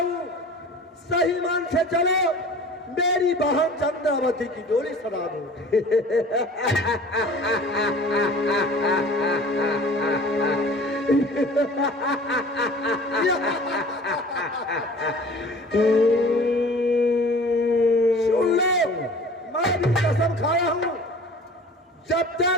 सही मन से चलो, मेरी बहन चंद्रावती की डोली सजा दो। सुन लो, मैं भी कसम खाया हूँ, जब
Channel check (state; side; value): normal; both; correlation 0.44